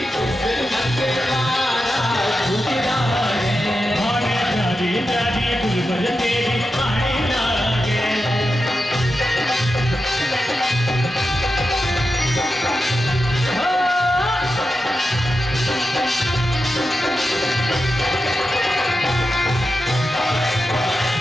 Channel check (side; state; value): both; normal; correlation 0.90